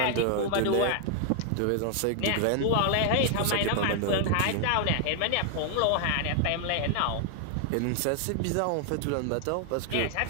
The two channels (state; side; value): different; both; correlation 0.00